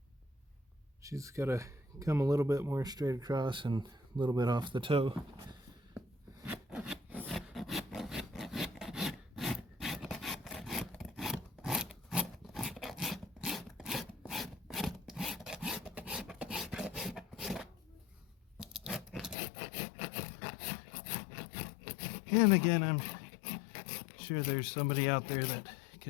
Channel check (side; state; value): right; drops out; at 19.4 s